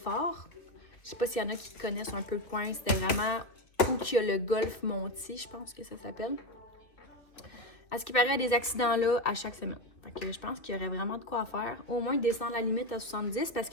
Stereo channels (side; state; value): right; late; 2.5 ms